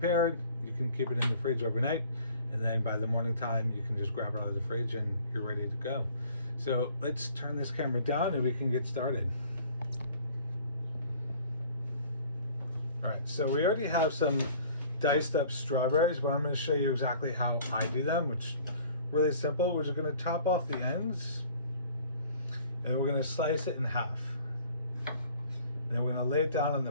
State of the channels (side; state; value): both; inverted; correlation -0.52